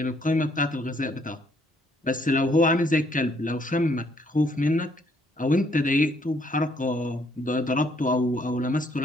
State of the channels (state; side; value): normal; both; correlation 0.68